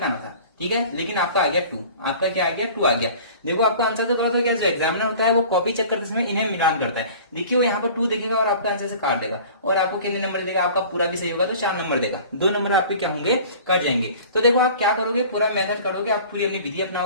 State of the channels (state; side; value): inverted; both; correlation -0.44